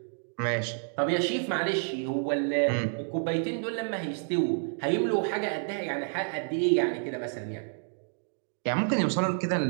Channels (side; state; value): left; silent; 58 dB below the other